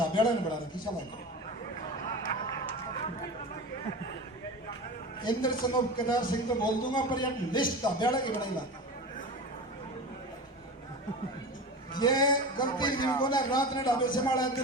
ने बना रखी। चलो इंद्र सनोप केदार सिंह तो बोल दूंगा, पर यार लिस्ट ढाबेड़ा की बनाई ला। ये गलती जिनको ना रात ने ढाबे से मारा,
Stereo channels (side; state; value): both; normal; correlation 0.29